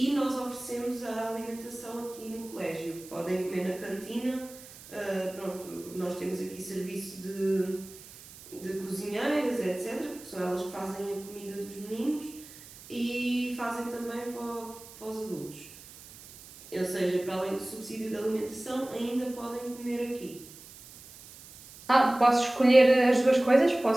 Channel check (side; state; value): right; noise; hiss, 18 dB below the sound